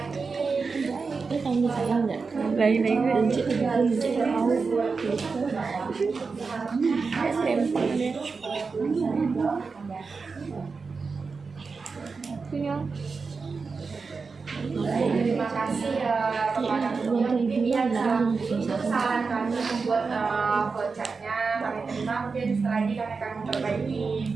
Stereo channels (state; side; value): quieter; left; 4.7 dB